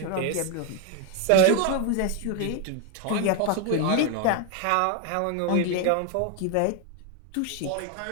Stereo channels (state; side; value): different; both; correlation 0.01